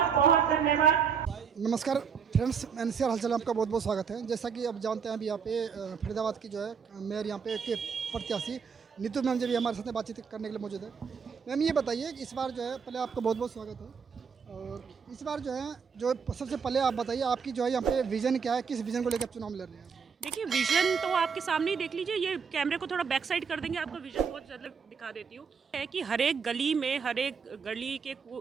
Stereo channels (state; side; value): quieter; left; 6.3 dB